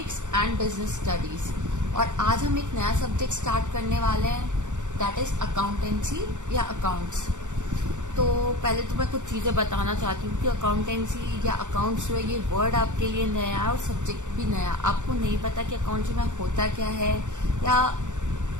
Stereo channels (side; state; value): left; late; 0.85 ms